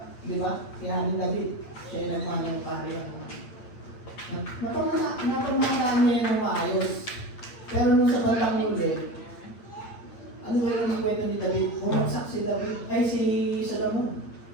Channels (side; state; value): right; late; 8.7 ms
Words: Di ba? Kaya ni David, siya yung nagmahal ng kaharian. Napamahalaan niya ng maayos. Pero nung sa bandang huli, ano ba yung kwento ni David? Bumagsak si David, si Solomon.